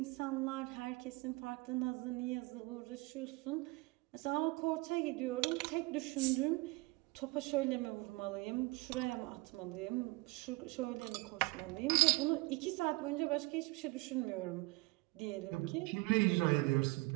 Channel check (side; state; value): left; quieter; 24.0 dB